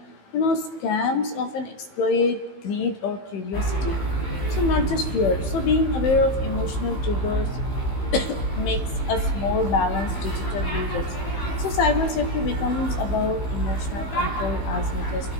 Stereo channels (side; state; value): right; late; 15 ms